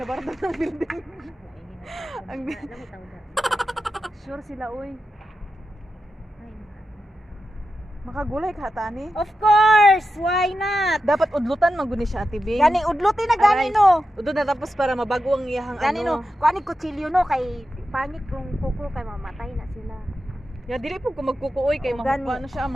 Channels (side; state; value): both; normal; correlation 0.90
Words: bardo ng building. Ang sure sila oy. Makagulay ka tani? Of course, why not? Dapat udlutan maguni siya Ate Bing. Gani udlutin na gani no. Udod na tapos para mabago ang iyahang Gani ano. no. Kuani kutsilyo no kay pangit kung kuko kay mamatay na sila. Ya dili po ko magkukuoy kay O, gani. makuha na siya